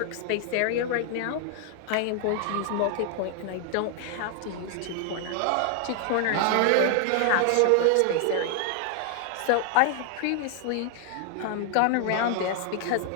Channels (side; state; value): both; different; correlation 0.00